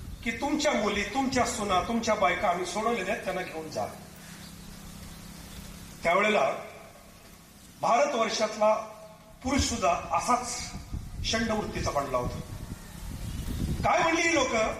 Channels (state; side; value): identical; both; correlation 1.00